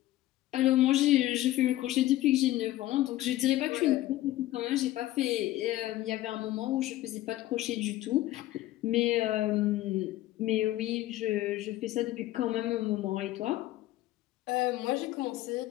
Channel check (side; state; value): right; quieter; 15.5 dB